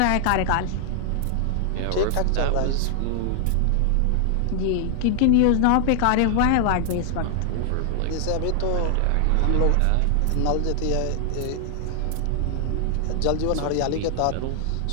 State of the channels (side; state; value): both; different; correlation 0.00